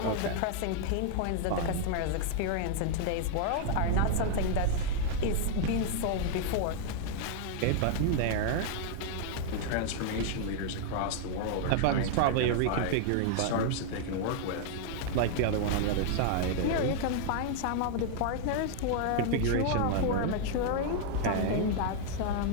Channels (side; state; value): both; different; correlation -0.01